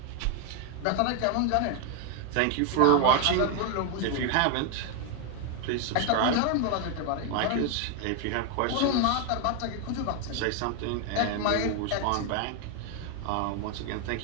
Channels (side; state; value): both; different; correlation 0.01